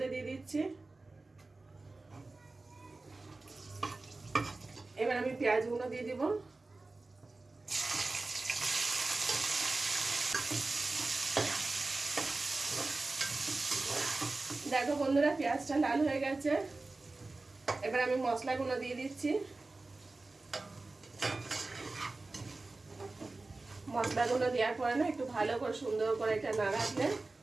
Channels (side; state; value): left; quieter; 3.4 dB